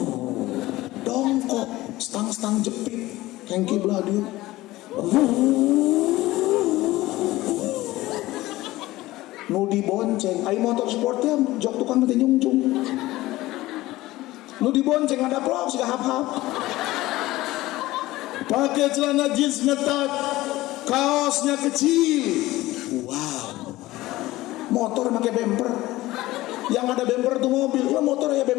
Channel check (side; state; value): right; quieter; 17.7 dB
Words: Dongko, stang-stang jepit, hengki belah dia. Nu dibonceng, ai motor sportnya jok tukang nanti nyungcung. Nu dibonceng ada vlog sih hap-hap. pakai celana jeans ngetat, kaosnya kecil. Wow. Motor pakai bumper. Yang ada bumper tuh mobil, lah motor ya